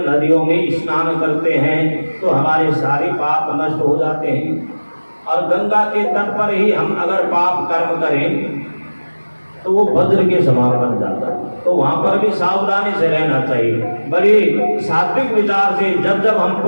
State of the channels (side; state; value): both; inverted; correlation -1.00